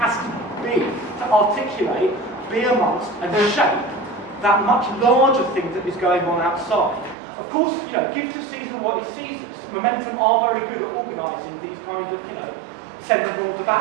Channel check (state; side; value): drops out; left; at 7.2 s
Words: to be to articulate, be amongst and shape that much larger thing that is going on outside. Of course, you know, give to Caesar what is Caesar's. Momentum are very good at organising these kind of, you know, send everyone to